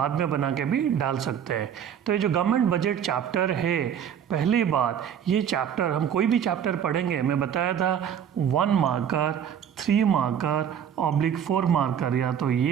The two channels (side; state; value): left; quieter; 8.7 dB